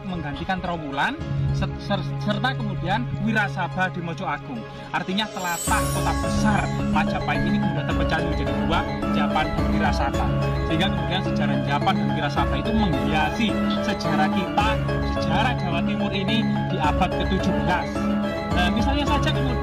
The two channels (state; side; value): identical; both; correlation 1.00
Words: menggantikan Trowulan, serta kemudian Wirasaba di Mojo Agung. Artinya telatah kota besar Majapahit ini kemudian terpecah menjadi dua, Japan dan Wirasaba. Sehingga kemudian sejarah Japan dan Wirasaba itu menghiasi sejarah kita, sejarah Jawa Timur ini di abad ke-17. Misalnya saja